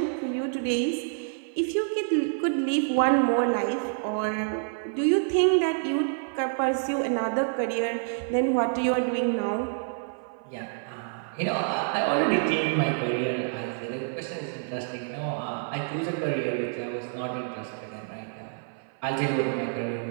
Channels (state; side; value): silent; left; 56 dB below the other